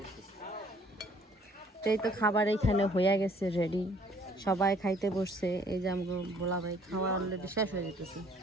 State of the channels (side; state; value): both; normal; correlation 0.59